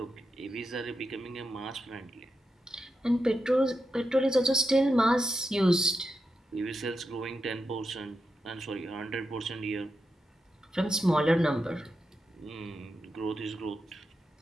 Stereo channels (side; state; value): both; normal; correlation 0.87